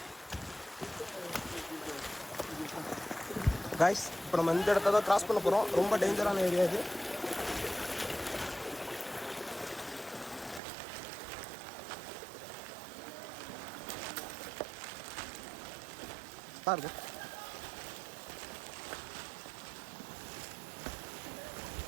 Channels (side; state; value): left; drops out; at 10.6 s